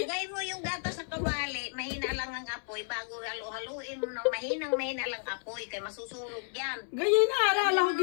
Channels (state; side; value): silent; right; 56 dB below the other